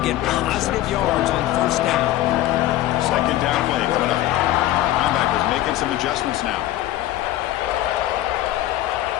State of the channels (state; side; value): quieter; right; 14.5 dB